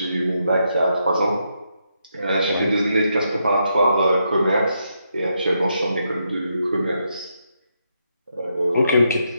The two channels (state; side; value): inverted; both; correlation -0.80